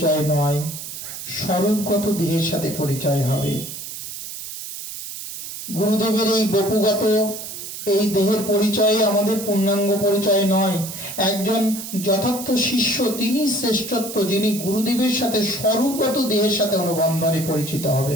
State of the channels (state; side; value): noise; right; hiss, 9 dB below the sound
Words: নয়, স্বরূপগত দেহের সাথে পরিচয় হবে। গুরুদেবের এই বপুগত এই দেহের পরিচয় আমাদের পূর্ণাঙ্গ পরিচয় নয়। একজন যথার্থ শিষ্য তিনি শ্রেষ্ঠত্ব, যিনি গুরুদেবের সাথে স্বরূপগত দেহের সাথে অনুবন্ধনে পরিচিত